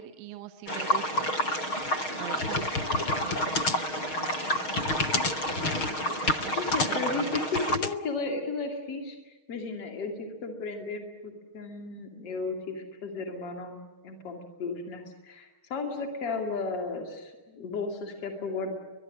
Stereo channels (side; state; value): right; late; 6.4 ms